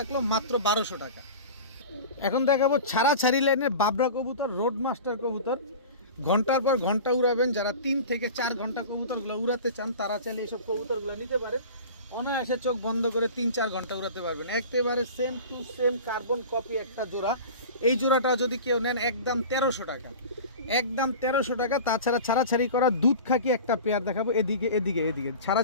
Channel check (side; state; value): both; inverted; correlation -0.35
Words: মাত্র 1200 টাকা। এখন দেখাবো ছাড়াছাড়ি লাইনের বাবরা কবুতর, রোড মাস্টার কবুতর। ঘন্টার পর ঘন্টা উড়াবেন, যারা 3 থেকে 4 ঘন্টা কবুতরগুলো উড়াতে চান তারা চাইলে এইসব কবুতরগুলো নিতে পারেন। অনায়াসে চোখ বন্ধ করে 3-4 ঘন্টা উড়াতে পারবেন। একেবারে same to same carbon copy একটা জোড়া। এই জোড়াটা যদি কেউ নেন একদম 1300 টাকা, একদম 1300 টাকা। তাছাড়া ছাড়াছাড়ি করা দুধ খাকি একটা পেয়ার দেখাবো, এদিকে এদিকে এদিকে